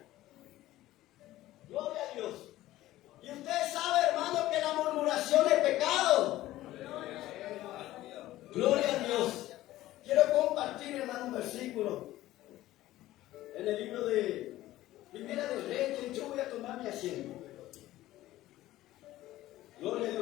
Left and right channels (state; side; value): quieter; right; 15.5 dB